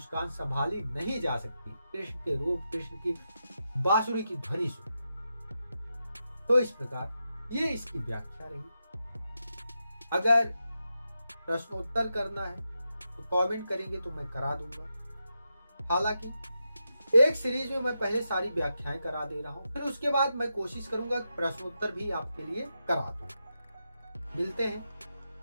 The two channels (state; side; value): inverted; both; correlation -0.87